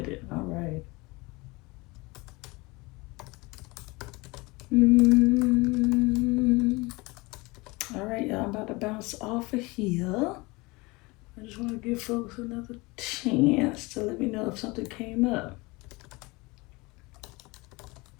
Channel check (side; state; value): right; quieter; 24.4 dB